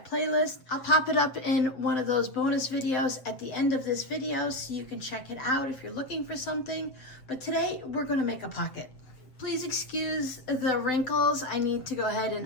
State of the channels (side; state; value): right; late; 7.6 ms